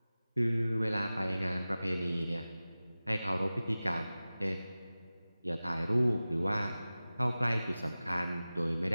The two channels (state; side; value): inverted; both; correlation -0.97